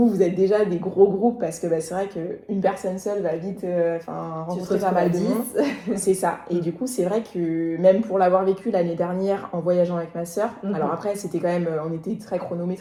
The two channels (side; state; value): both; identical; correlation 1.00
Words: êtes déjà des gros groupes parce que c'est vrai qu'une personne seule va vite rencontrer pas mal de monde. C'est ça. Et du coup, c'est vrai que même pour l'avoir vécu l'année dernière en voyageant avec ma sœur, alors après, c'était quand même, on était très